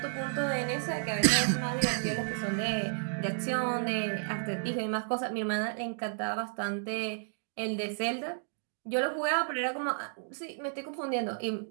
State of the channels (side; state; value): left; silent; digital silence